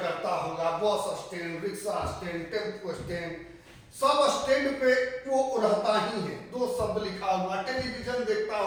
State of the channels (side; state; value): both; identical; correlation 1.00